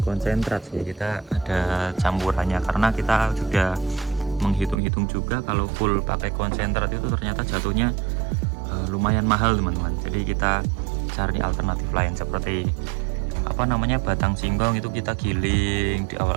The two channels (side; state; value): left; drops out; at 4.8 s